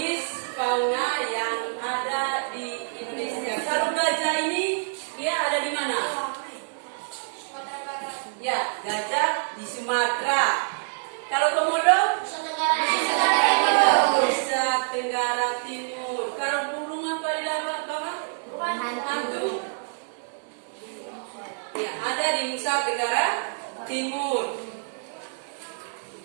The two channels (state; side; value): silent; left; 61 dB below the other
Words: fauna yang ada di Indonesia. Kalau gajah ini dia ada di mana? Ya, gajah di Sumatera. Kalau komodo? Nusa Tenggara Timur. Kalau burung apa di bawah? Hantu. Ya, ada di Nusa Tenggara Timur.